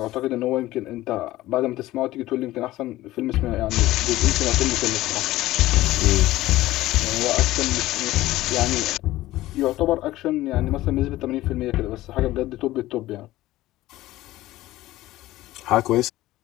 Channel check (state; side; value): quieter; right; 16.5 dB